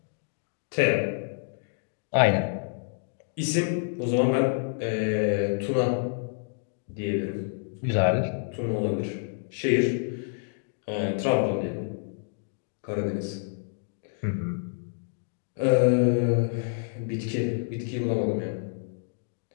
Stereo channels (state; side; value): silent; right; digital silence